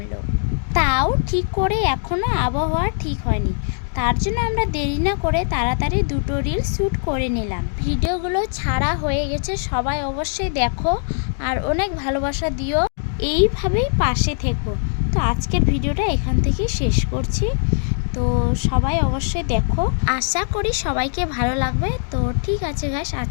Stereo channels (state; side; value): silent; right; 65 dB below the other